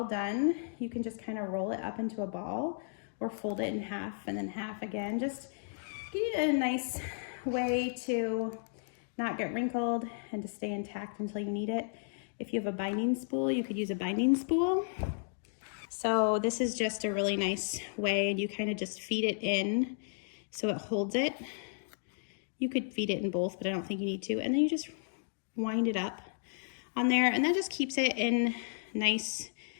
done, you can just kind of roll it up into a ball or fold it in half and then half again. Just give it a nice way to not get wrinkled and to stay intact until you need it. If you have a binding spool, you could use a binding spool. So this is just a really nice way, and you kind of just feed it in so it holds it. You could feed it in both, but I don't think you need to. And then you just wind it up on there, and that just keeps it in nice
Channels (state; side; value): silent; right; digital silence